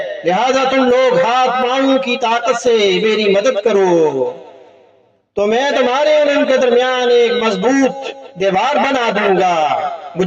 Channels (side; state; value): both; identical; correlation 1.00